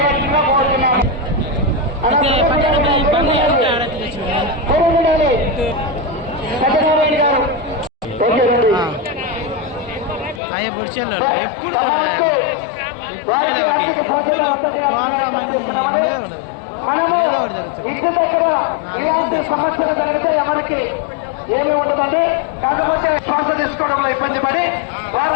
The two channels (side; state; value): right; drops out; at 10.4 s